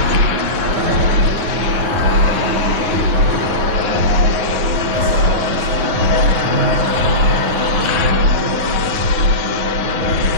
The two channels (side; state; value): left; late; 9.6 ms